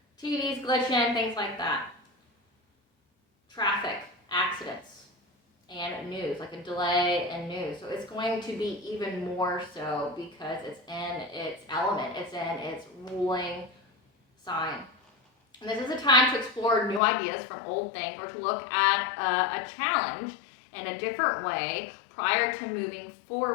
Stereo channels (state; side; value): drops out; right; at 17.0 s